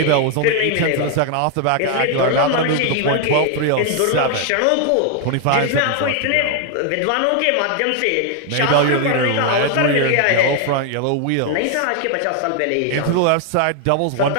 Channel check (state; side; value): different; both; correlation 0.00